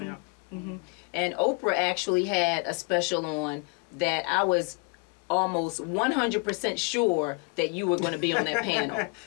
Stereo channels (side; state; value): right; quieter; 32.0 dB